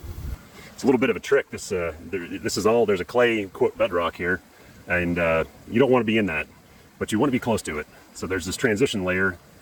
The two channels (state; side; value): identical; both; correlation 1.00